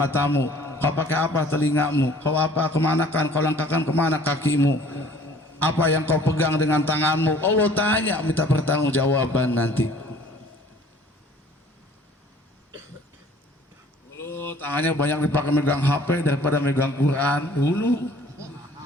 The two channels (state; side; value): normal; both; correlation 0.53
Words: kau pakai apa telingamu, kau apa kemanakan, kau langkahkan kemana kakimu, apa yang kau pegang dengan tanganmu. Allah tanya, minta pertanggungjawaban nanti. Tangannya banyak dipakai megang HP daripada megang Quran dulu.